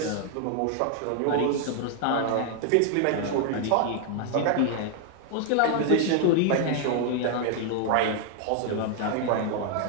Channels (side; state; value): both; different; correlation 0.00